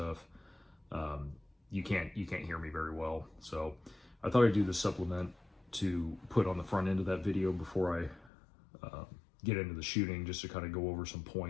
you can't hear me very well. So I thought I'd do the supplement to put on the front end of that video before I get into the shooting, just to kind of go over some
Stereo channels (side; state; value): right; drops out; at 8.3 s